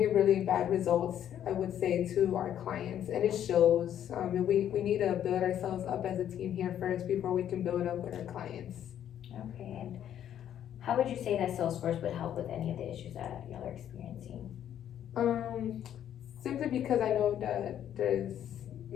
really bad results, I would say, to our clients, and it shows. We need to build ourselves up as a team here first before we can build up with our clients. Okay, and how would you say that Salesforce would help with any of the issues that y'all are experiencing? Simply because I know that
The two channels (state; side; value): quieter; right; 10.4 dB